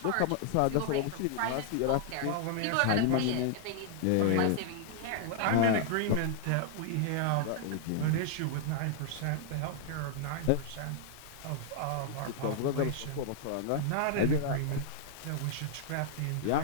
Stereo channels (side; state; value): both; different; correlation -0.01